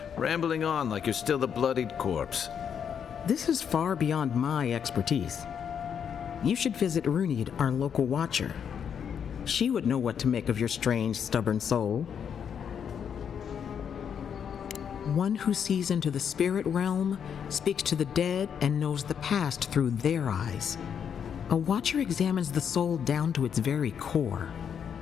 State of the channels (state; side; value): quieter; right; 7.8 dB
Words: rambling on like you're still a bloodied corpse. This is far beyond my expertise. You should visit Runid, our local watcher. She would know what to make of your strange, stubborn soul. One who sees into the spirit realm, speaks to the dead, and knows the past through their eyes. A watcher examines the soul down to its very core.